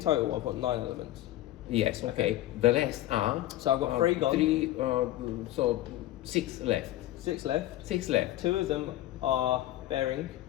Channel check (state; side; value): quieter; right; 14.7 dB